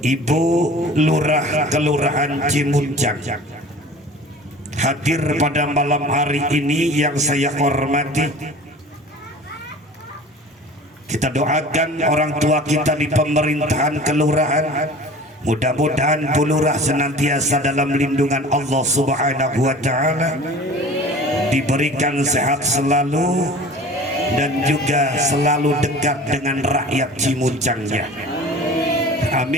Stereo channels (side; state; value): both; normal; correlation 0.42